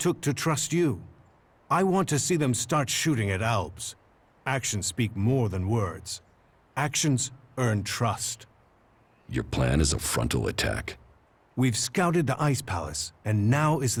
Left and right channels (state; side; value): identical; both; correlation 1.00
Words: to trust you. I want to see them start shooting at Alps. Actions speak more than words. Actions earn trust. Your plan is a frontal attack? We've scouted the Ice Palace, and now is